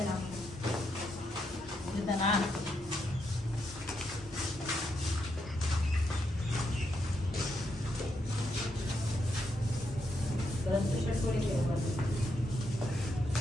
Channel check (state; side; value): normal; both; correlation 0.80